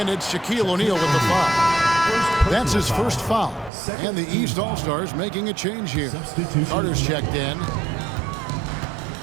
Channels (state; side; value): drops out; left; at 3.7 s